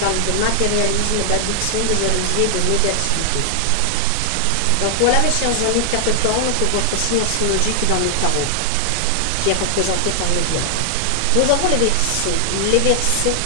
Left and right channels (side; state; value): both; different; correlation 0.00